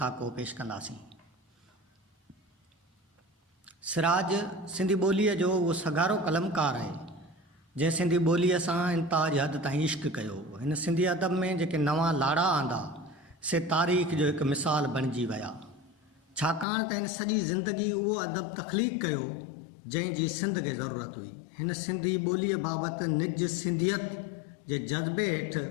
पेश कंदासीं। सिराज सिंधी ॿोलीअ जो उहो सगारो कलमकार आहे जंहिं सिंधी ॿोलीअ सां इंताज हद ताईं इश्क कयो। हिन सिंधी अदब में जेके नवां लाड़ा आंदा से तारीख़ जो हिकु मिसाल बणिजी विया, छाकाणि त हिन सॼी ज़िंदगी उहो अदब तख़लीक़ कयो जंहिंजी सिंध खे ज़रूरत हुई। हिन सिंधी ॿोलीअ बाबति निज सिंधियत जे जज़्बे हेठि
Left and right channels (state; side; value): drops out; right; at 16.7 s